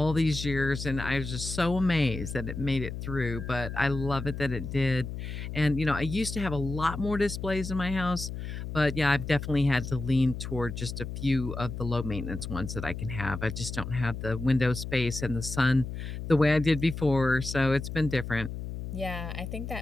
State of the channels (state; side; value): noise; left; hum, 7 dB below the sound